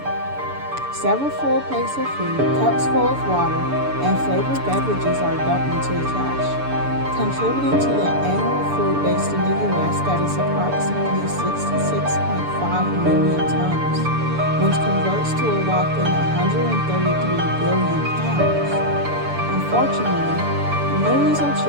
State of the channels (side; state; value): left; late; 6.9 ms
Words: Several full plates of food, cups full of water, and flavored beverages are dumped into the trash, contributing to the annual food waste in the U.S. that is approximately 66.5 million tons, which converts to a whopping 133 billion pounds. Unfortunately, millions of